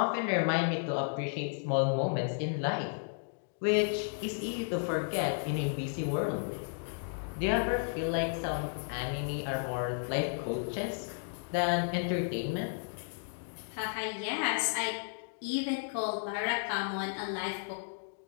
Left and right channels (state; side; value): silent; right; digital silence